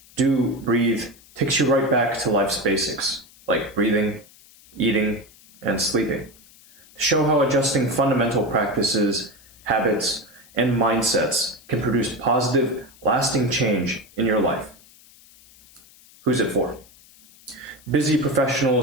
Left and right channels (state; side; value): noise; left; hiss, 25 dB below the sound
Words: Do Breathe takes you right back to life's basics, like breathing, eating, and sleeping, to show how adjusting fundamental practices, habits, and mindsets can produce positive, lasting change in your life. Who's it for? Busy